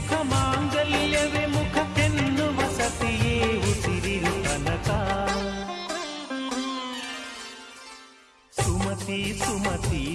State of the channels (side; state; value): both; identical; correlation 1.00